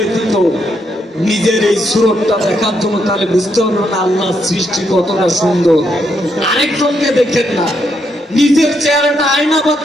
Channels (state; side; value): normal; both; correlation 0.78